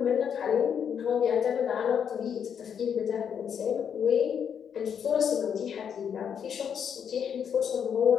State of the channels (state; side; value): quieter; right; 7.8 dB